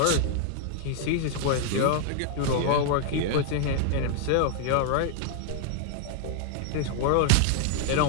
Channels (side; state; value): both; different; correlation 0.00